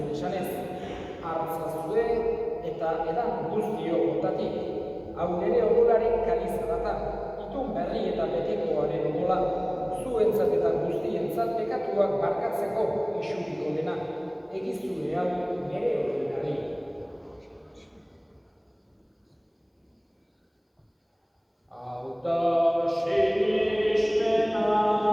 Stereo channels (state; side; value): identical; both; correlation 1.00